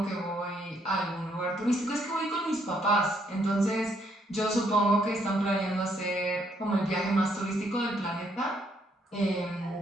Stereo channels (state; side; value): normal; both; correlation 0.71